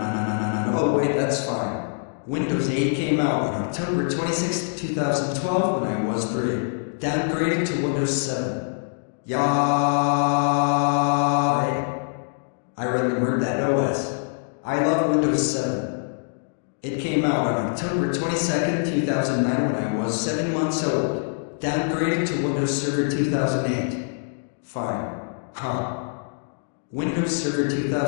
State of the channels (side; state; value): right; silent; 62 dB below the other